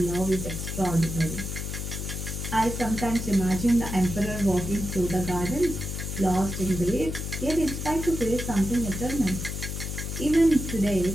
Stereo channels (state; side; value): noise; left; hum, 5 dB below the sound